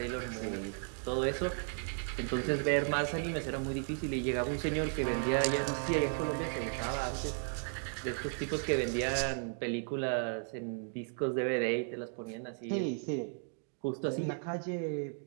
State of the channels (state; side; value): silent; left; 54 dB below the other